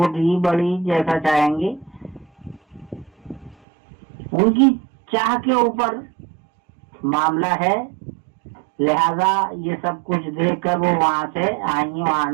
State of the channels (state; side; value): drops out; left; at 3.6 s